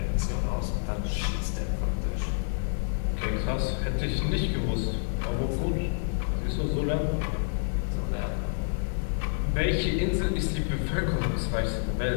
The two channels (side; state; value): right; silent; digital silence